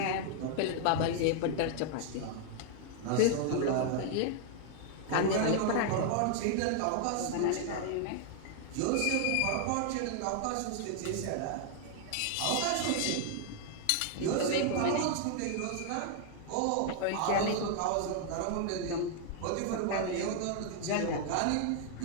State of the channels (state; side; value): different; both; correlation -0.01